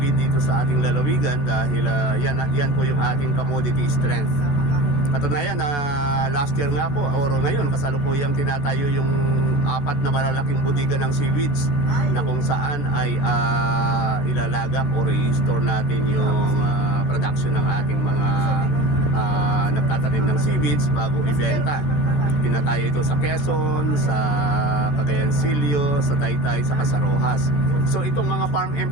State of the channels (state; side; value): late; right; 13 ms